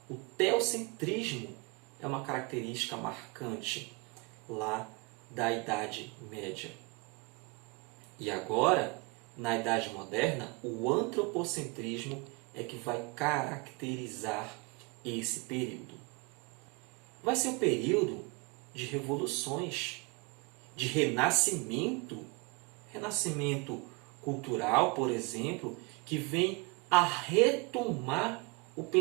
O teocentrismo é uma característica marcante lá da Idade Média. E agora, na Idade Moderna, o antropocentrismo é que vai caracterizar esse período. Vai ser um período de revoluções, de renascimento cultural, por exemplo, que vem a retomar o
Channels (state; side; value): quieter; left; 28.1 dB